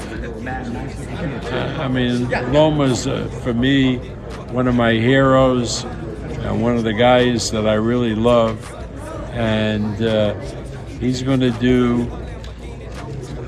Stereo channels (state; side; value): identical; both; correlation 1.00